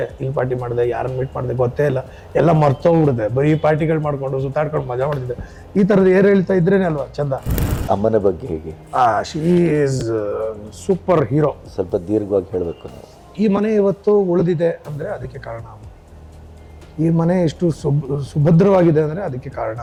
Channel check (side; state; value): both; identical; correlation 1.00